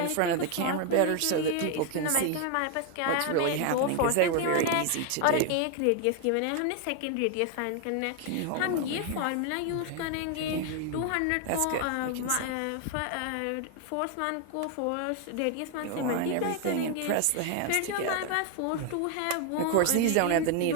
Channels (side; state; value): both; different; correlation 0.01